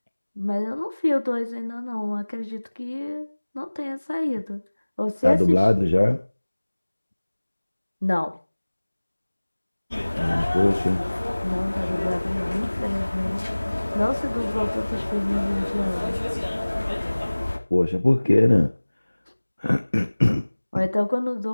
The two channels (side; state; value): both; inverted; correlation -1.00